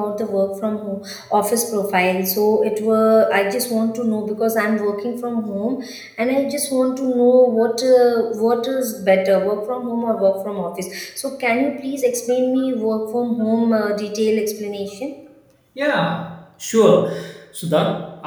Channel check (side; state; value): both; identical; correlation 1.00